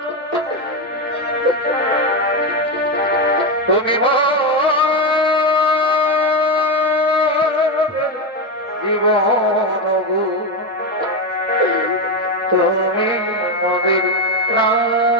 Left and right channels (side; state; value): both; normal; correlation 0.11